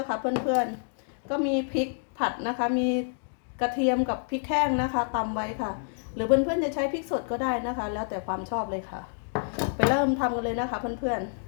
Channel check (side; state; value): right; silent; digital silence